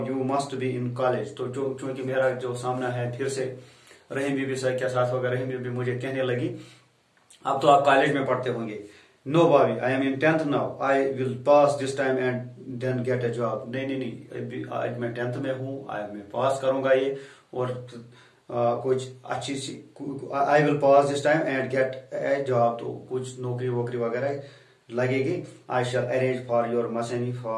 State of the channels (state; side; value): identical; both; correlation 1.00